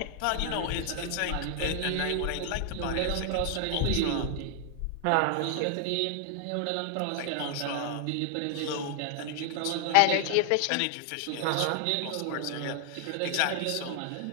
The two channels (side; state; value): both; different; correlation 0.00